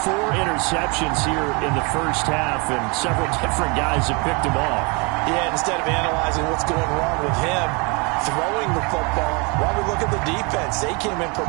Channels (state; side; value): quieter; left; 30.8 dB